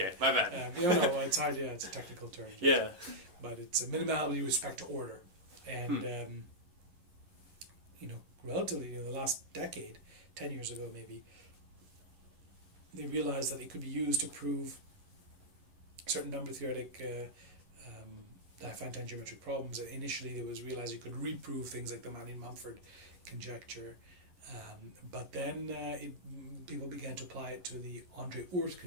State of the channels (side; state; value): left; late; 11 ms